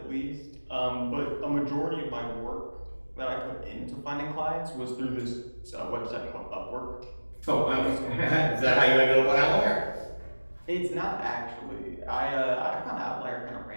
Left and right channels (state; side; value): inverted; both; correlation -1.00